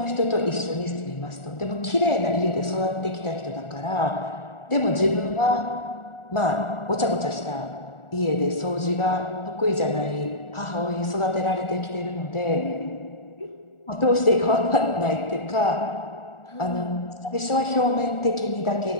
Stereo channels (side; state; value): right; late; 1.4 ms